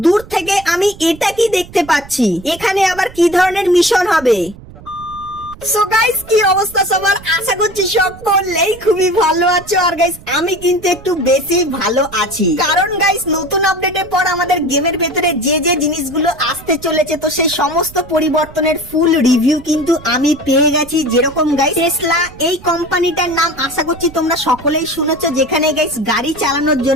দূর থেকে আমি এটা কি দেখতে পাচ্ছি, এখানে আবার কি ধরনের মিশন হবে? সো গাইস, কি অবস্থা সবার? আশা করছি সকলেই খুবই ভালো আছো। আর গাইস, আমি কিন্তু একটু বেশি ভালো আছি, কারণ গাইস নতুন আপডেটের পর আমাদের গেমের ভেতরে যে যে জিনিসগুলো আসতে চলেছে, তো সেই সমস্ত পরিবর্তনের ফুল রিভিউ কিন্তু আমি পেয়ে গেছি। যেরকম গাইস টেসলা, এই কোম্পানিটার নাম আশা করছি তোমরা সকলেই শুনেছো, যেখানে গাইস গাড়ি চালানোর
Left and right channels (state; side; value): noise; right; rumble, 19 dB below the sound